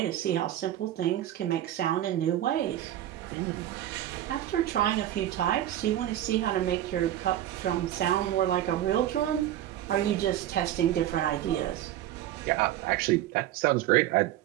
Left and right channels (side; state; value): left; quieter; 12.7 dB